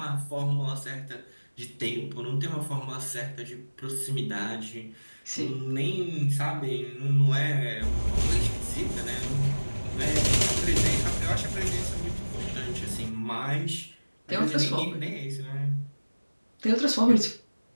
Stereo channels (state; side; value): inverted; both; correlation -1.00